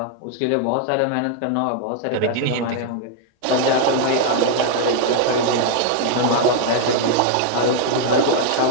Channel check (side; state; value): both; different; correlation 0.00